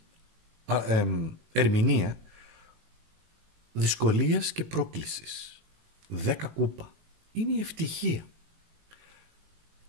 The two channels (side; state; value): left; late; 19 ms